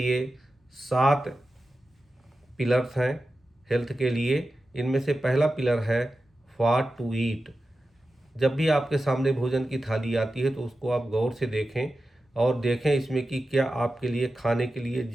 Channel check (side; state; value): both; normal; correlation 0.93